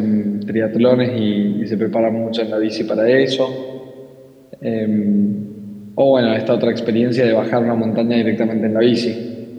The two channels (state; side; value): identical; both; correlation 1.00